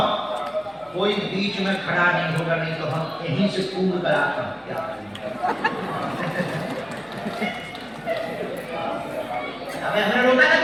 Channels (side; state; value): both; identical; correlation 1.00